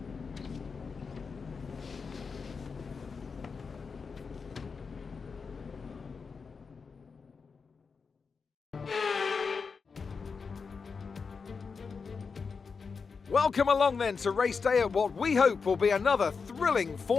Welcome along then to race day at what we hope will be another thrilling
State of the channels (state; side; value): quieter; right; 5.2 dB